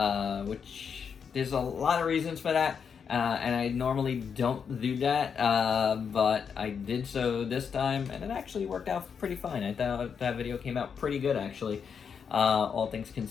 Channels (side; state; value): right; quieter; 6.7 dB